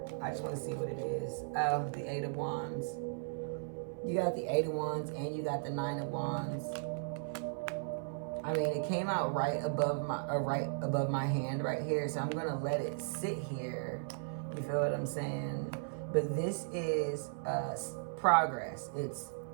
I just want to see what it is. Oh, the 8 of Wands. You got the 8 of Wands and you got the 9 of Wands. I mean, it came out right above my hand right here, so I'm gonna let it sit here. You feel what I'm saying? But this is progress. It's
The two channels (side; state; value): left; silent; 54 dB below the other